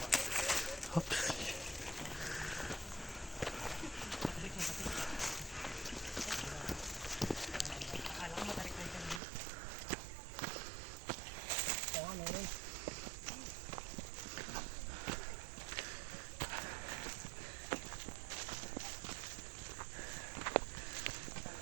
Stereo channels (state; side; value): drops out; left; at 9.2 s